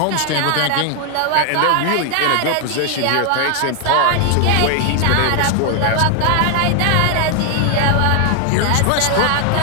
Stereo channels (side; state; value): both; different; correlation 0.00